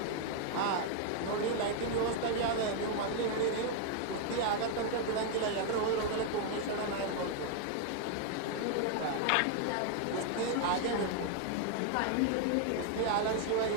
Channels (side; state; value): both; different; correlation 0.00